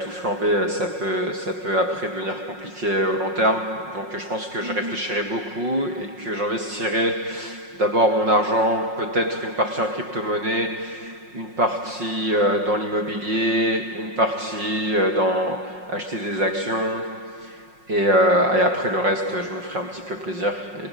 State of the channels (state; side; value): late; left; 5.5 ms